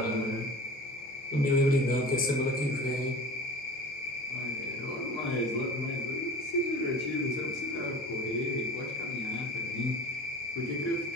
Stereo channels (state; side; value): normal; both; correlation 0.38